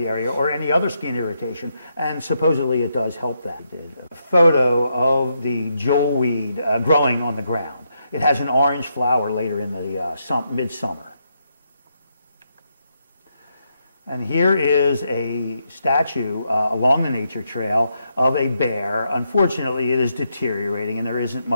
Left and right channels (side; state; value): both; inverted; correlation -0.80